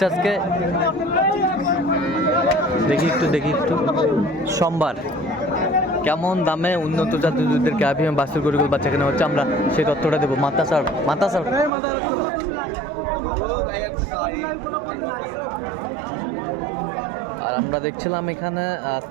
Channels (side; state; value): left; drops out; at 11.7 s